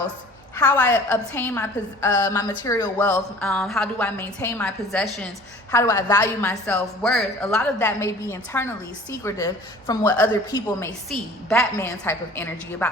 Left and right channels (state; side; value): normal; both; correlation 0.47